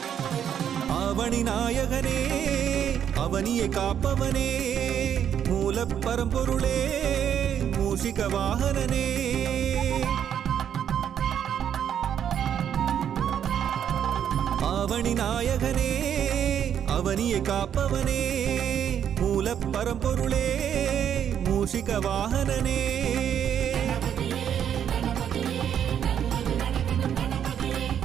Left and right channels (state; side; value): quieter; left; 9.0 dB